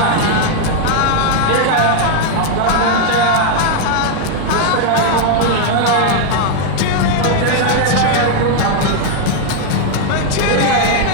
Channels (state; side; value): different; both; correlation 0.00